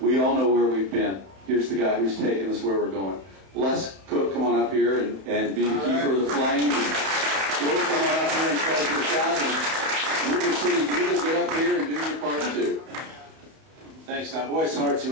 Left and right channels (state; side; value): late; left; 31 ms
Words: all know where we've been. Here's the guy who's taking us where we're going. Les Cook, come on up here and be the keeper of the flame. And Joe, come on up here and close your shot. And River City, you get up here and do your part too. Thanks, Tom. Boy, it's hard